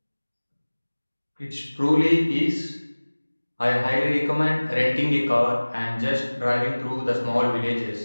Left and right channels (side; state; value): both; inverted; correlation -1.00